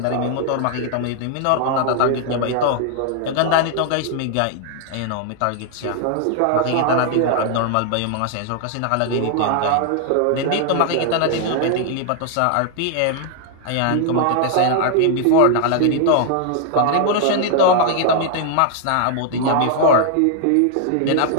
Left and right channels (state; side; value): different; both; correlation 0.00